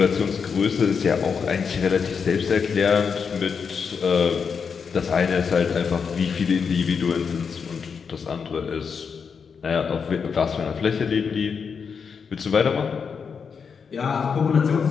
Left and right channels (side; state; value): right; quieter; 6.1 dB